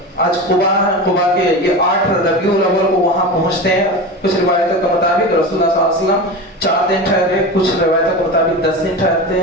آج قبا ہے۔ قبا کے یہ 8 ربیع الاول کو وہاں پہنچتے ہیں۔ کچھ روایتوں کے مطابق رسول اللہ صلی اللہ علیہ وسلم 4 دن ٹھہرے، کچھ روایتوں کے مطابق 10 دن ٹھہرتے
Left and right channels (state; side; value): normal; both; correlation 0.26